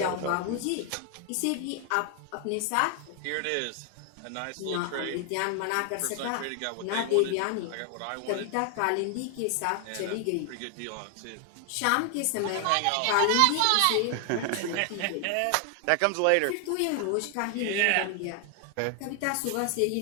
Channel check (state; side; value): different; both; correlation 0.00